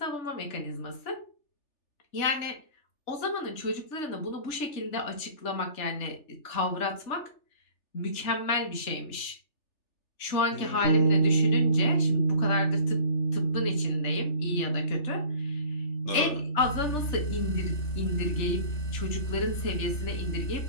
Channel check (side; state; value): right; late; 3.4 ms